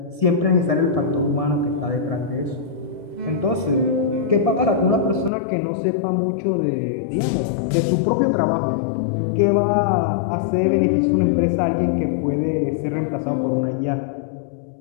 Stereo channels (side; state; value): right; drops out; at 5.3 s